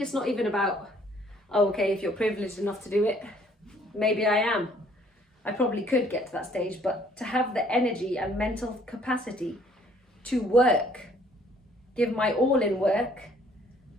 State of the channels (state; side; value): normal; both; correlation 0.61